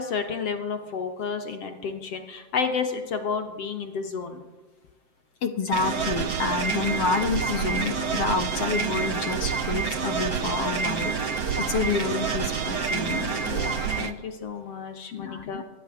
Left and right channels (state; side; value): late; right; 7.7 ms